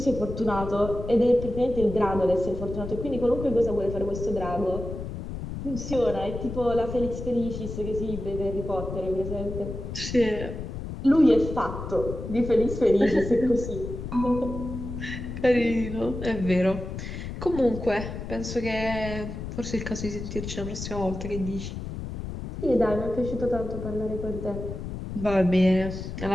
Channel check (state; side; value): noise; left; rumble, 7 dB below the sound